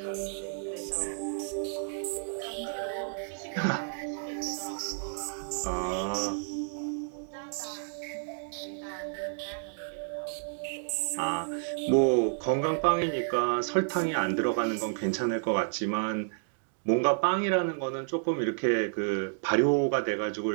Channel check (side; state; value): left; silent; digital silence